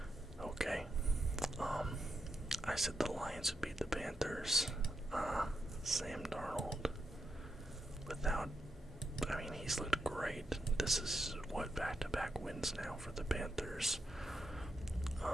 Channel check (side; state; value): both; normal; correlation 0.84